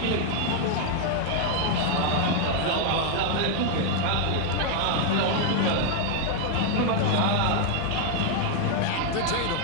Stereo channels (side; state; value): both; different; correlation 0.00